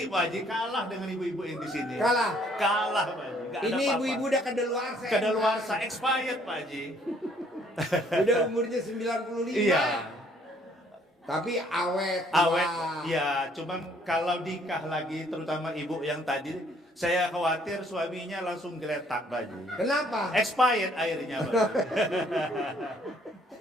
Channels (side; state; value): both; normal; correlation 0.63